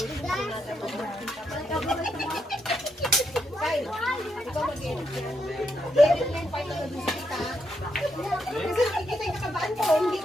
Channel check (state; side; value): normal; both; correlation 0.80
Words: Kasi nakikita yung kabaan ko, hindi